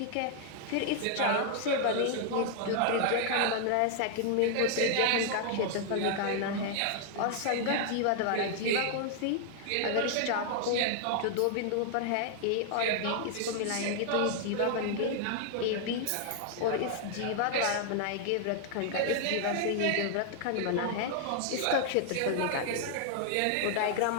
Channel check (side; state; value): both; different; correlation 0.00